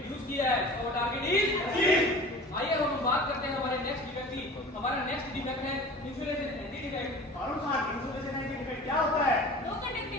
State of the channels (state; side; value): normal; both; correlation 0.40